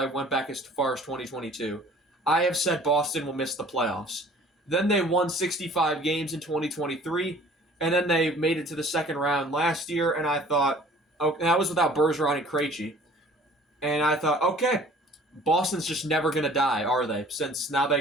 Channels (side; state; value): both; normal; correlation 0.51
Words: went back as far as 2022. I have said Boston will miss the playoffs. Then they won 65 games in 2023. And then they made it to the second round last year. And I thought, oh, that was without Bergeron and Krejci. And I thought, okay, Boston's just never going to die, are they? Since now they